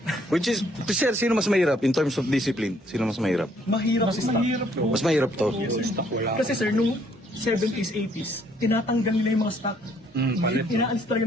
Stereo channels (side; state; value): both; normal; correlation 0.66